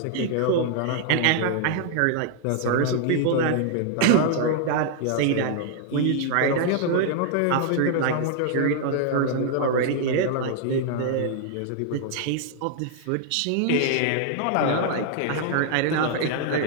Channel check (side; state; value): both; different; correlation 0.00